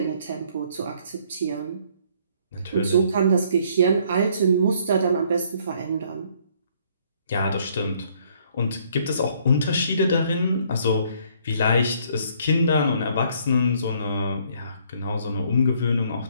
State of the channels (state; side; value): inverted; both; correlation -0.64